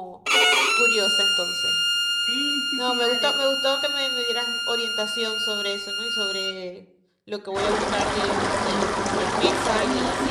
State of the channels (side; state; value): both; identical; correlation 1.00